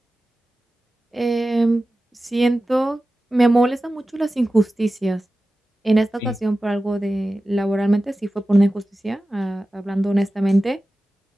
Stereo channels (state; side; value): normal; both; correlation 0.95